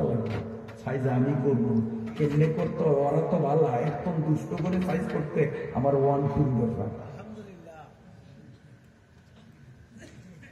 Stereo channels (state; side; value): identical; both; correlation 1.00